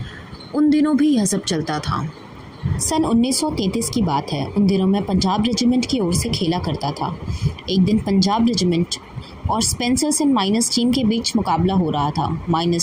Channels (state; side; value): identical; both; correlation 1.00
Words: उन दिनों भी यह सब चलता था। सन 1933 की बात है। उन दिनों मैं पंजाब रेजिमेंट की ओर से खेला करता था। एक दिन पंजाब रेजिमेंट और स्पेंसर्स एंड माइनस टीम के बीच मुकाबला हो रहा था।